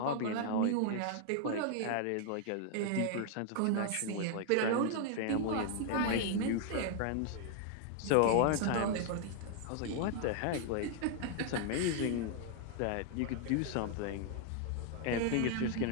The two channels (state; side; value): different; both; correlation 0.00